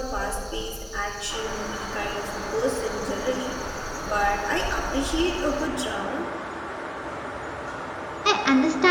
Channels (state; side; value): identical; both; correlation 1.00